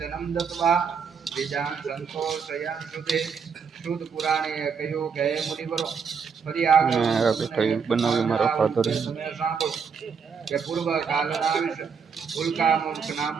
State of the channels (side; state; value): left; quieter; 6.1 dB